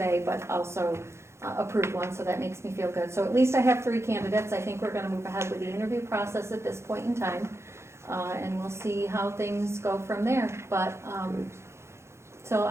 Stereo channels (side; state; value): left; late; 0.13 ms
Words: but also approved one, so that makes me feel good. So at least I have 3 candidates. I think we're gonna move ahead with the interview process at this point in time. And we'll see how things go from there, but, so